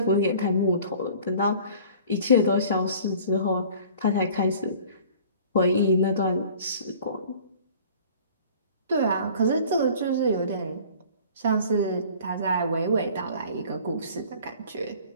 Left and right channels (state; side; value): inverted; both; correlation -0.47